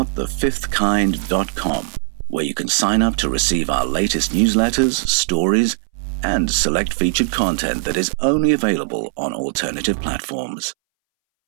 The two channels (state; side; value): silent; left; 64 dB below the other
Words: where you can sign up to receive our latest newsletters, stories, and select featured content that is only available on alternative platforms.